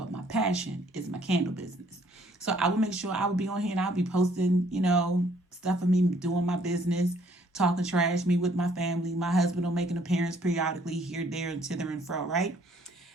my passion is my candle business. So I will make sure I will be on here and I'll be posting, you know, stuff of me doing my business, talking trash, me with my family. My husband will make an appearance periodically here, there, and thither and fro, right?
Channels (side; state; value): both; normal; correlation 0.63